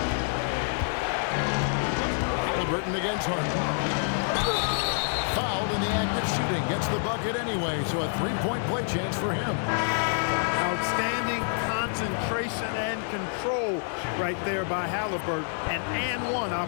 Halliburton against Harden. Fouled in the act of shooting. Gets the bucket anyway, so a 3-point play chance for him. Outstanding concentration and control right there by Halliburton. An and one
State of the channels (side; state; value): right; silent; digital silence